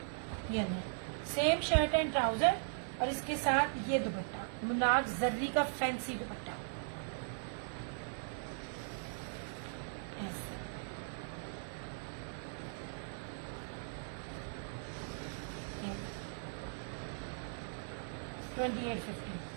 ये नहीं, सेम शर्ट एंड ट्राउजर, और इसके साथ ये दुपट्टा, मुनाक जर्री का फैंसी दुपट्टा, ऐसे। $2850।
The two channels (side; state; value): left; silent; 52 dB below the other